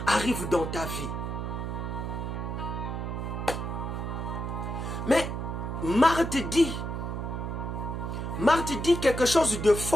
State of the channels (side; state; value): right; noise; hum, 4 dB below the sound